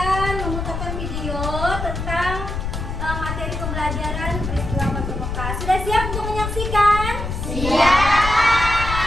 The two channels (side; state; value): left; noise; rumble, 4 dB below the sound